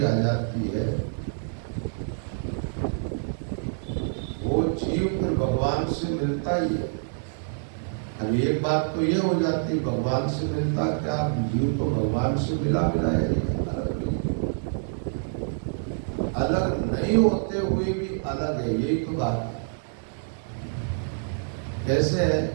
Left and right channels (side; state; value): left; silent; digital silence